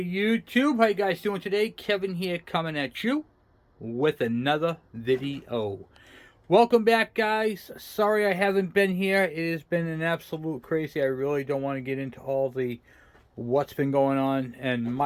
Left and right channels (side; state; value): both; identical; correlation 1.00